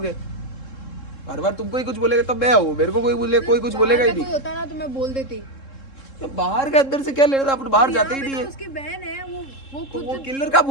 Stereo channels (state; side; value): late; right; 3.7 ms